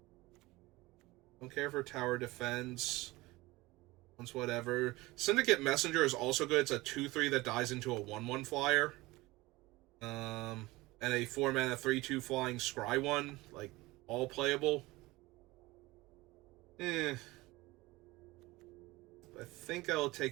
Don't care for Tower Defense. Once whatever. Syndicate Messenger is also good. It's a 2/3 that dies into a 1/1 flyer. And a 4-mana 3/2 flying Scry one, like, all playable. I think I'll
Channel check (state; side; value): quieter; left; 20.5 dB